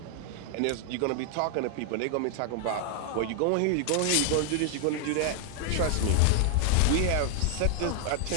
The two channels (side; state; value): both; different; correlation 0.00